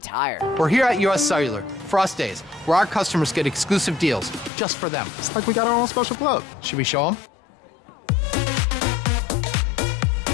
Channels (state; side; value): drops out; right; at 4.5 s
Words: Tire. We're here at US Cellular, Frost Days, where our customers get exclusive deals just for them. It's like we got our own special club. Should we show them?